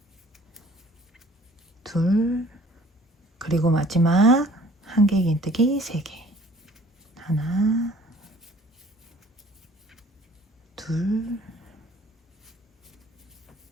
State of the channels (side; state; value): both; normal; correlation 0.54